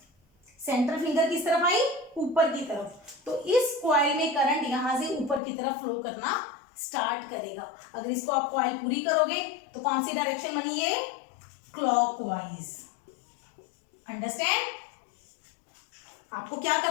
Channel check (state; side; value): drops out; right; at 5.4 s